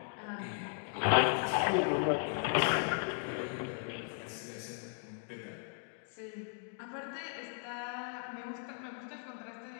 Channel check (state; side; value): silent; right; 53 dB below the other